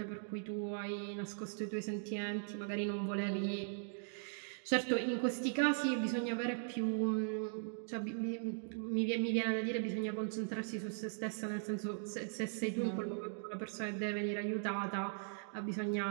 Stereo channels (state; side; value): silent; left; digital silence